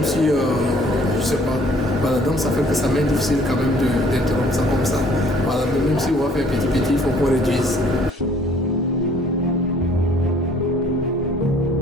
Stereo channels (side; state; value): both; normal; correlation 0.58